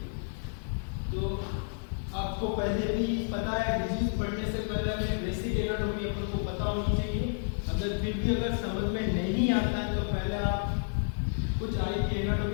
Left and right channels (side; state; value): right; silent; digital silence